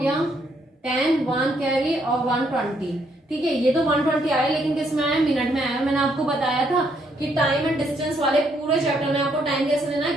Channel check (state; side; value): normal; both; correlation 0.72